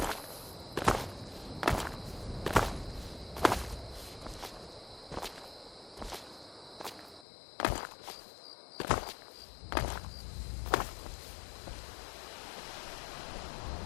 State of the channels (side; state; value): right; drops out; at 7.2 s